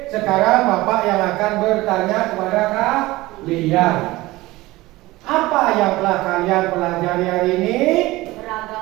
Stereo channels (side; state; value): left; quieter; 19.2 dB